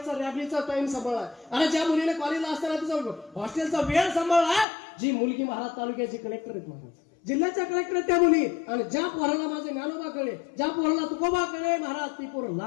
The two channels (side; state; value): right; drops out; at 4.7 s